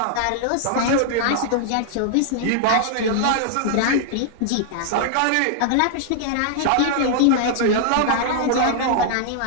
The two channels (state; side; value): different; both; correlation -0.01